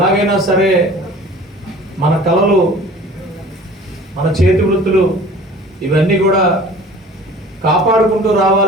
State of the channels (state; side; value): normal; both; correlation 0.45